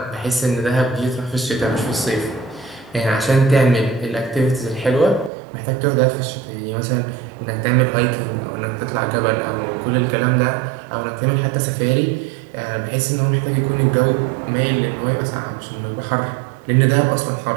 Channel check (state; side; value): drops out; left; at 5.3 s